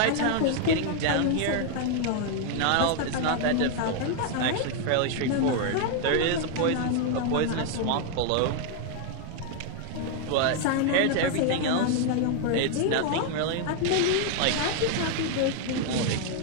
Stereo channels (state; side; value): different; both; correlation 0.00